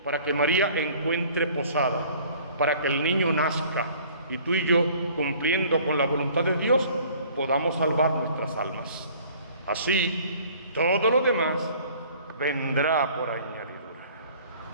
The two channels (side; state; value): both; inverted; correlation -0.52